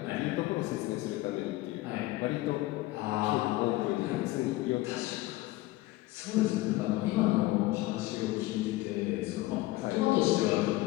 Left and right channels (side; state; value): right; quieter; 18.4 dB